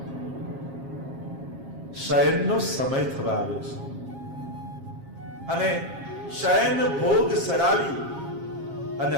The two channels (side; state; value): left; late; 7.4 ms